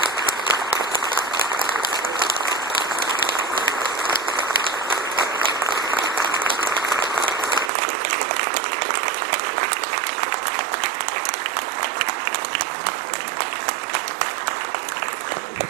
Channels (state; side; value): drops out; left; at 7.7 s